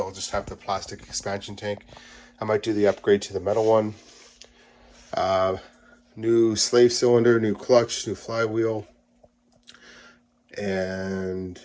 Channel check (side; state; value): both; identical; correlation 1.00